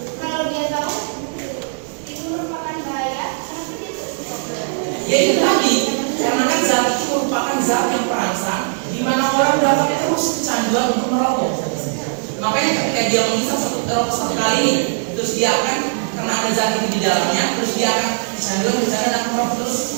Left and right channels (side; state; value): left; silent; 65 dB below the other